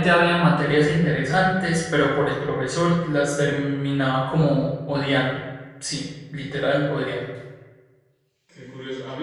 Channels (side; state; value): both; identical; correlation 1.00